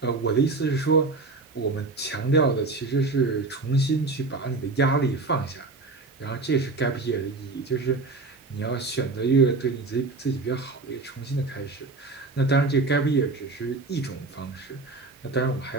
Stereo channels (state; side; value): quieter; left; 3.5 dB